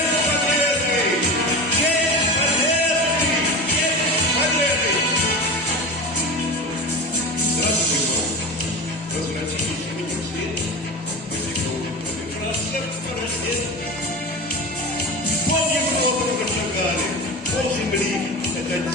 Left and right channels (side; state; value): both; normal; correlation 0.28